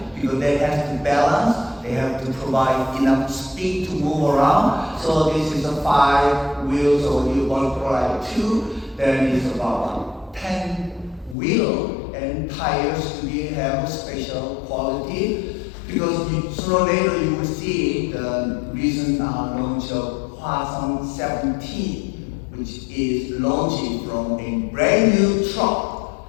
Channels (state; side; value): drops out; right; at 11.4 s